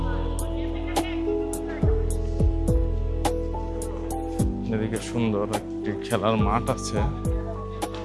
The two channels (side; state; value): both; identical; correlation 1.00